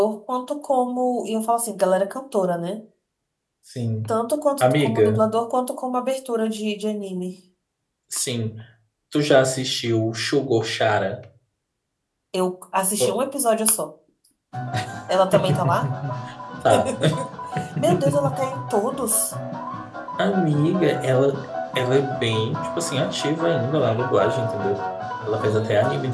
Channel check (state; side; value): identical; both; correlation 1.00